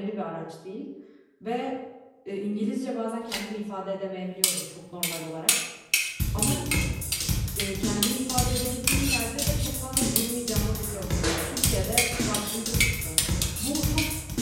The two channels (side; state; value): both; identical; correlation 1.00